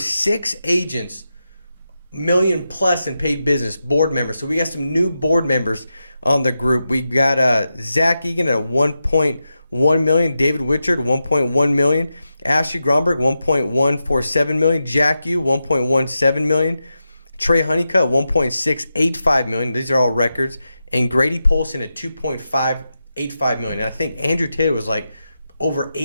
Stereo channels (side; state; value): both; inverted; correlation -0.89